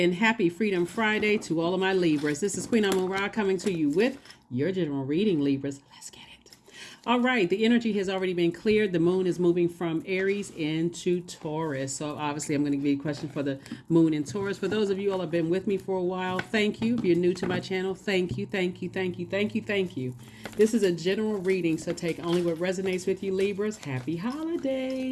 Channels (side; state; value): both; identical; correlation 1.00